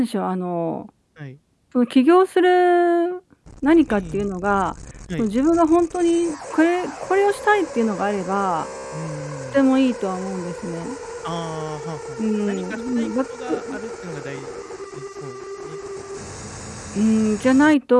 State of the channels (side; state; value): both; identical; correlation 1.00